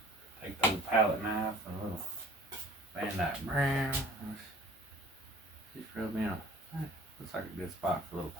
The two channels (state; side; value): normal; both; correlation 0.50